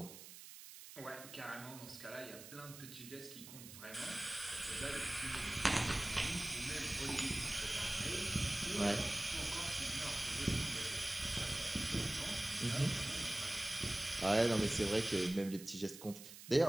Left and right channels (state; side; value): noise; right; hiss, 14 dB below the sound